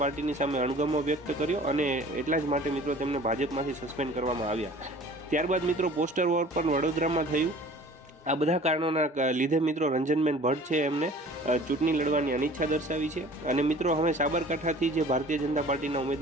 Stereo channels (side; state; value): both; normal; correlation 0.47